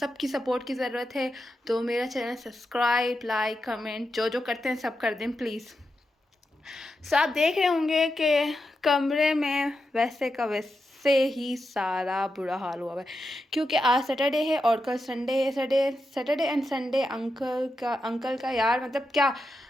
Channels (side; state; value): both; normal; correlation 0.88